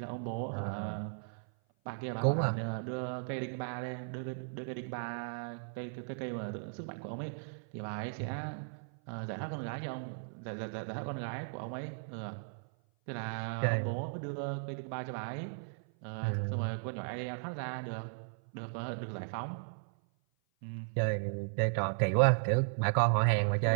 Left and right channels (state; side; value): silent; left; 54 dB below the other